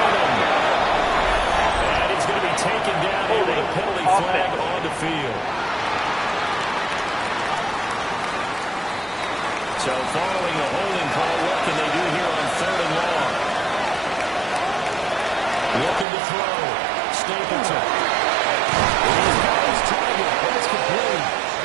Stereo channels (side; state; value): left; drops out; at 16.1 s